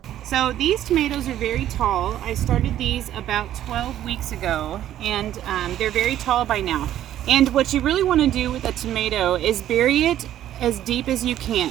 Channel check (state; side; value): quieter; left; 12.0 dB